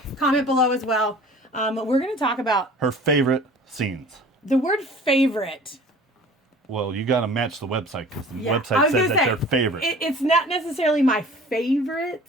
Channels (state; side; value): normal; both; correlation 0.45